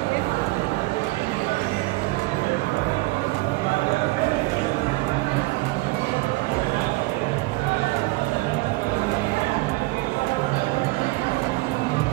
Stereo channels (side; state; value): left; quieter; 22.5 dB